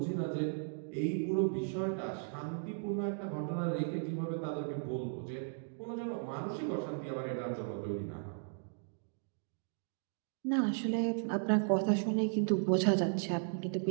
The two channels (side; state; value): left; silent; digital silence